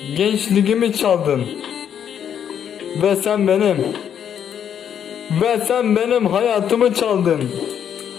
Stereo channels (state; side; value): quieter; right; 8.8 dB